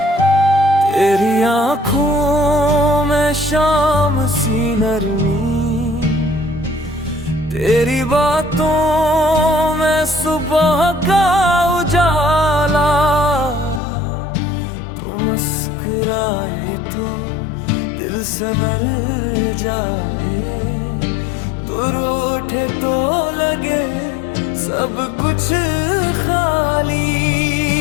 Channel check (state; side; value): drops out; right; at 13.8 s